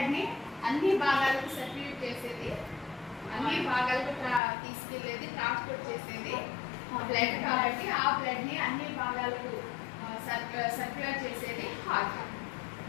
ని అన్ని భాగాలకు సర్క్యులేట్ చేసేది, అన్ని భాగాలకు తీసుకెళ్లేది, ట్రాన్స్పోర్ట్ చేసేది బ్లడ్. కాబట్టి ఆ బ్లడ్ ని అన్ని భాగాలకు సర్క్యులేట్ చేసేది హార్ట్.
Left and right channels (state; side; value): drops out; right; at 4.4 s